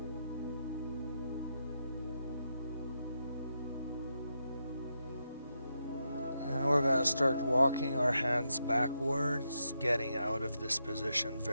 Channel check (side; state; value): both; inverted; correlation -0.83